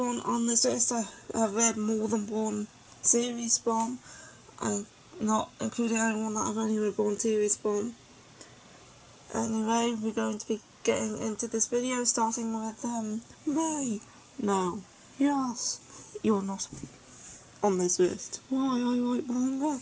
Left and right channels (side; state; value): both; identical; correlation 1.00